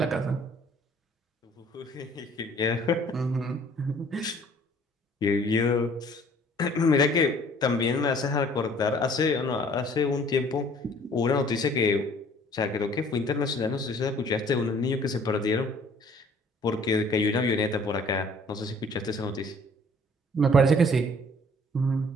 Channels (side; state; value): both; normal; correlation 0.55